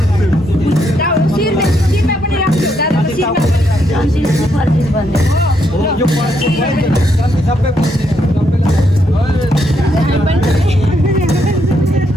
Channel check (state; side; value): normal; both; correlation 0.76